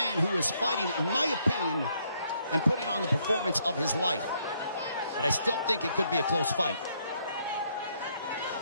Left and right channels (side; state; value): both; inverted; correlation -0.71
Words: who is fighting, in my opinion, and putting on the performance of his life. But I still think it could be a close fight.